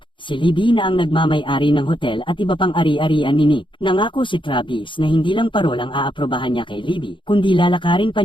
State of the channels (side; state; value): right; late; 0.24 ms